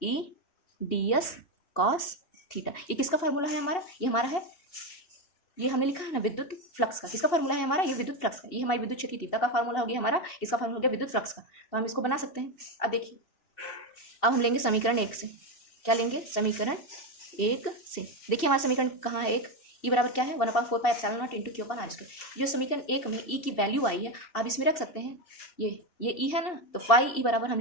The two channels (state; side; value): late; right; 2.7 ms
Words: E ds cos थीटा। ये किसका फार्मूला है हमारा, ये हमारा है, ये हमने लिखा है ना विद्युत फ्लक्स का। किसका फार्मूला है हमारा, ये विद्युत फ्लक्स का। ये हमारी विद्युत क्षेत्र की तीव्रता का फार्मूला हो गया हमारा, इसका फार्मूला हो गया विद्युत फ्लक्स का। तो हम इसको बना सकते हैं। अब देखिए, अब हम लेंगे समीकरण 1 से। क्या लेंगे, समीकरण 1 से। देखिए हमारा समीकरण कहाँ है, एक E बराबर क्या है, 1/4 pi epsilon not into Q/r²। जो समीकरण 1 में E की वैल्यू आई है, आप इसमें रख सकते हैं। ये E है ना, तो फाई E बराबर हम